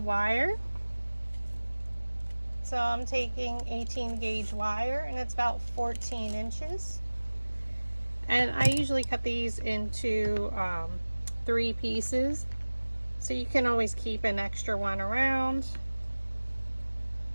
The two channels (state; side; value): inverted; both; correlation -1.00